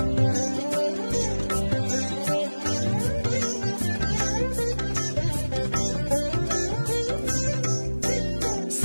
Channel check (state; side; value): inverted; both; correlation -1.00